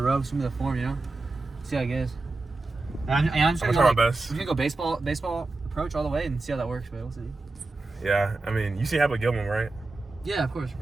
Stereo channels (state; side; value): quieter; left; 3.3 dB